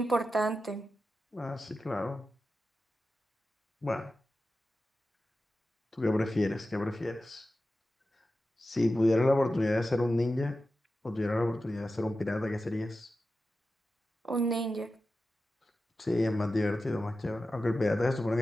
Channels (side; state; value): both; normal; correlation 0.92